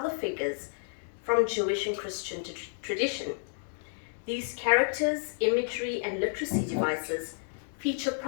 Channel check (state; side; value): silent; right; digital silence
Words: figures from Jewish and Christian tradition. These characters, imagery, and literacy devices feature